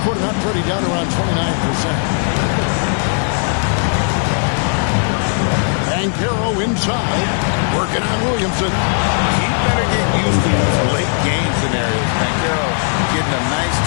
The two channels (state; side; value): silent; right; 61 dB below the other